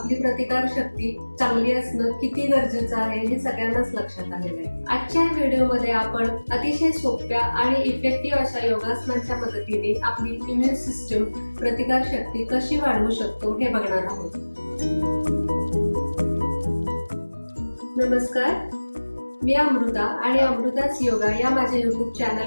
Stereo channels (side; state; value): both; inverted; correlation -1.00